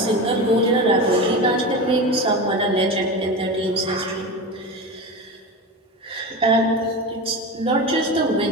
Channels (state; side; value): normal; both; correlation 0.25